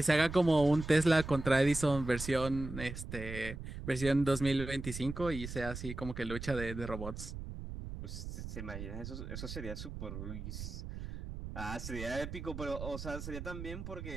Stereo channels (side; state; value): right; noise; rumble, 8 dB below the sound